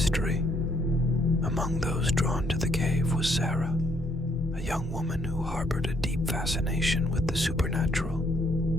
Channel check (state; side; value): normal; both; correlation 0.69